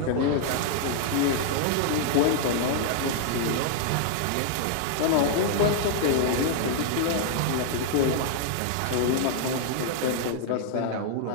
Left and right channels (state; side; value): different; both; correlation -0.01